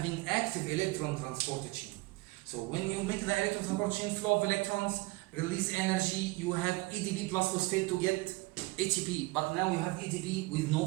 active electron transport chain. So when you make the electron transport chain flow of electrons, release energy, you have ATP plus phosphate to get ATP, but now you have ATP with no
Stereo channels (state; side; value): quieter; left; 22.8 dB